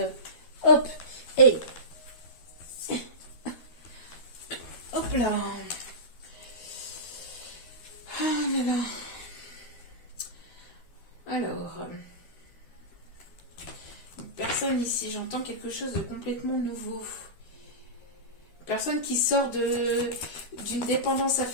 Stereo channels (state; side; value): late; right; 12 ms